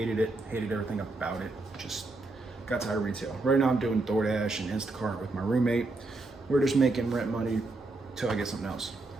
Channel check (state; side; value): quieter; left; 3.2 dB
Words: it, hated everything about it. Just got tired of retail. Right now I'm doing DoorDash and Instacart with my roommate. We're just making rent money till I get something else.